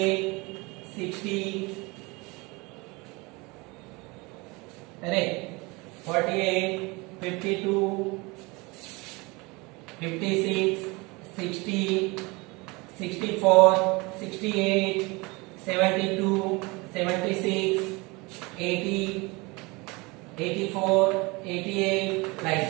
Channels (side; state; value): left; quieter; 25.6 dB